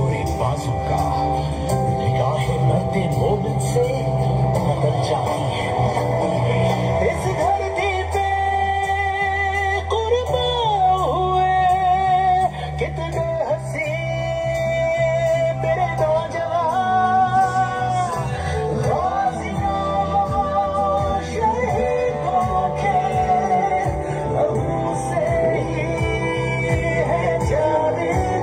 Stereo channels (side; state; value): both; identical; correlation 1.00